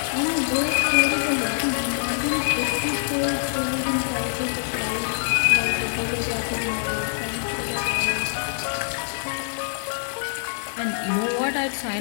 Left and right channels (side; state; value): right; silent; digital silence